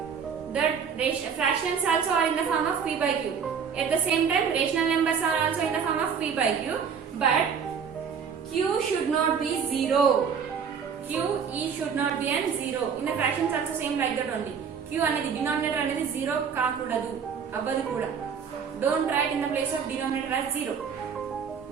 The fractions also are in the form of P by Q. At the same time, rational numbers are also in the form of P by Q. But Q should not be 0. QE should not be an 0. In the fractions also same like that only. Q anedi denominator anedi 0 kaakudadu. Avvadu kuda. Don't write in the place of denominator as 0.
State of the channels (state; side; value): quieter; left; 6.7 dB